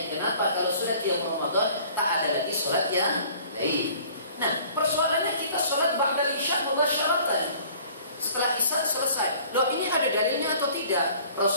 kenapa kalau sudah qiyam Ramadan tak ada lagi sholat yang lain. Nah, persoalannya kita sholat ba'da isya mubasyaratan. Setelah isya selesai. Loh, ini ada dalilnya atau tidak?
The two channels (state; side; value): inverted; both; correlation -0.51